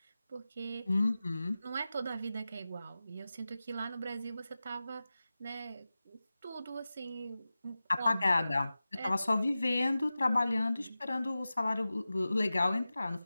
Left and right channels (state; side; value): inverted; both; correlation -0.95